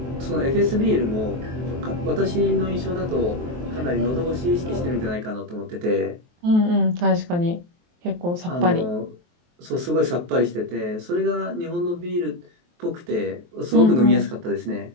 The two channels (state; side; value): late; left; 23 ms